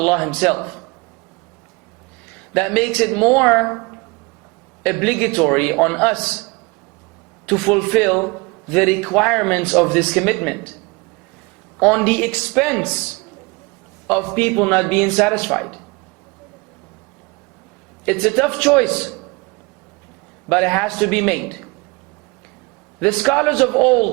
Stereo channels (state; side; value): quieter; left; 26.7 dB